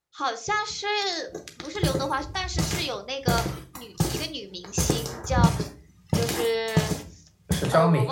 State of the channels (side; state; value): both; identical; correlation 1.00